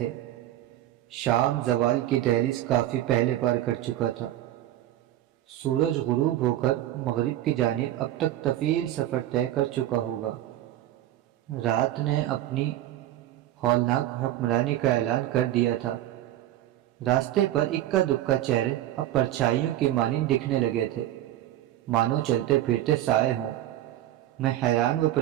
شام زوال کی دہلیز کافی پہلے پار کر چکا تھا۔ سورج غروب ہو کر مغرب کی جانب اب تک طویل سفر طے کر چکا ہوگا۔ رات نے اپنی ہولناک حکمرانی کا اعلان کر دیا تھا۔ راستے پر اکا دکا چہرے اب پرچھائیوں کی مانند دکھنے لگے تھے، مانو چلتے پھرتے سائے ہوں۔ میں حیران و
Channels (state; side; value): quieter; left; 13.6 dB